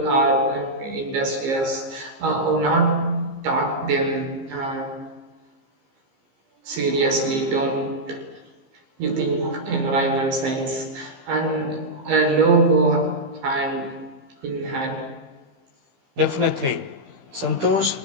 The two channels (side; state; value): left; late; 15 ms